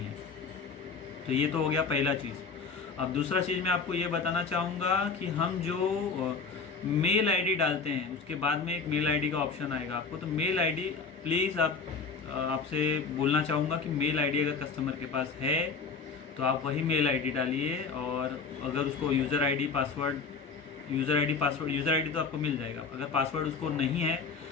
तो ये तो हो गया पहला चीज़। अब दूसरा चीज़ मैं आपको ये बताना चाहूँगा कि हम जो मेल आईडी डालते हैं उसके बाद में एक मेल आईडी का ऑप्शन आएगा आपको। तो मेल आईडी प्लीज़ आपसे बोलना चाहूँगा कि मेल आईडी अगर कस्टमर के पास है तो आप वही मेल आईडी डालिए, और अगर उसको user ID password user ID तो आपको मिल जाएगा। अगर पासवर्ड उसको नहीं है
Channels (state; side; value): quieter; right; 4.9 dB